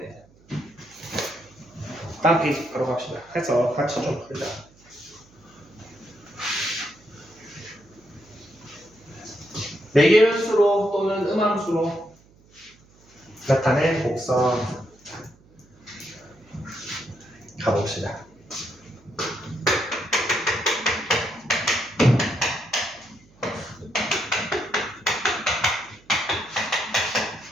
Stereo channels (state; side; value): noise; right; hum, 28 dB below the sound